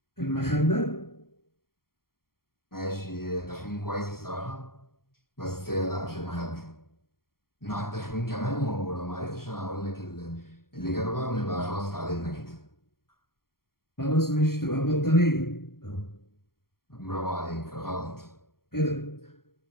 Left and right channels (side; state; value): right; late; 0.93 ms